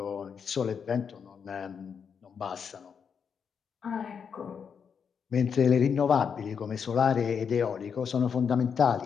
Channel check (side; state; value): right; quieter; 6.7 dB